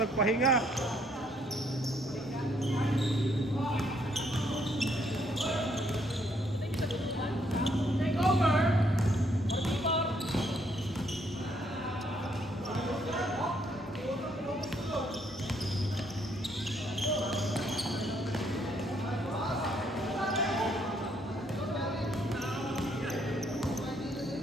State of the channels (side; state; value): both; normal; correlation 0.69